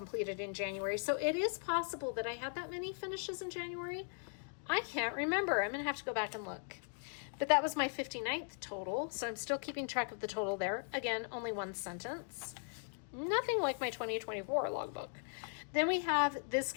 in January. So it is possible that I had that many finishes in January. I can't remember. I'm going to have to go back and look. But that was my 59th total. So I'm still keeping track of the total there. Again, only 1 sentence. Nothing like my 2024 logbook. Then we have this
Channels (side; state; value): right; silent; 52 dB below the other